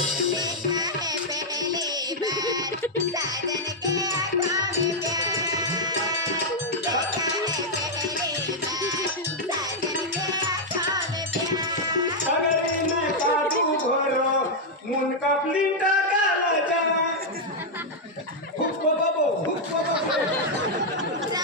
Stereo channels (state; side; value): normal; both; correlation -0.02